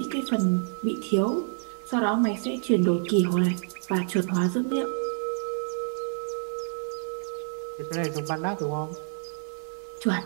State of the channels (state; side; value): silent; left; digital silence